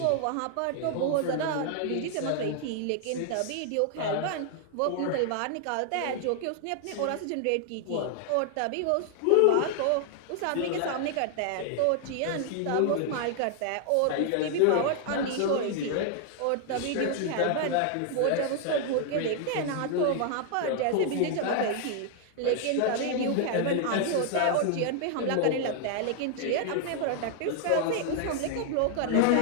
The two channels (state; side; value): different; both; correlation 0.00